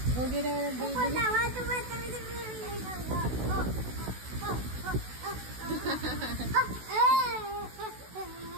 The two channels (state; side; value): late; left; 16 ms